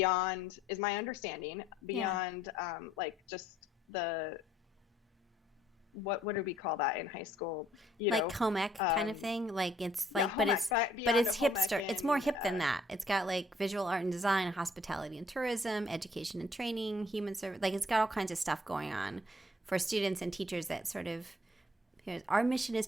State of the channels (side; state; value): both; normal; correlation 0.63